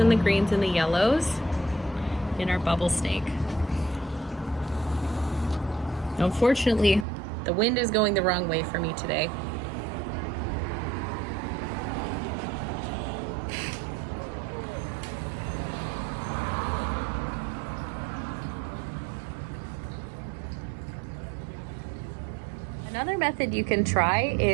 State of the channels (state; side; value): drops out; left; at 7.1 s